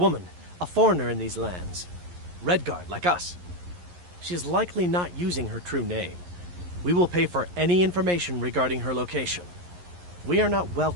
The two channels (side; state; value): left; late; 11 ms